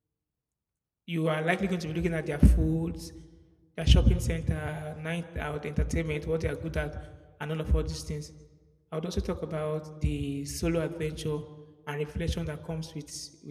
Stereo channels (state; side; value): identical; both; correlation 1.00